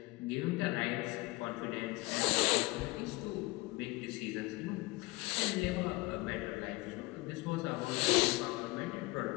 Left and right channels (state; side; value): quieter; right; 22.9 dB